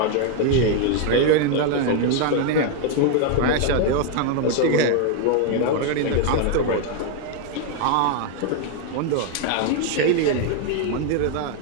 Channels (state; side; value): different; both; correlation 0.00